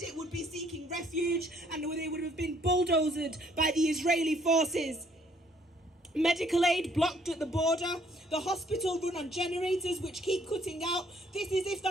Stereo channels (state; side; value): normal; both; correlation 0.64